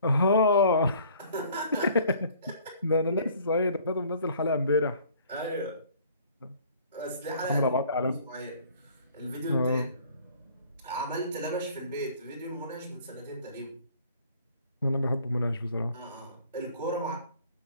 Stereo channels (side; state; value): both; inverted; correlation -0.55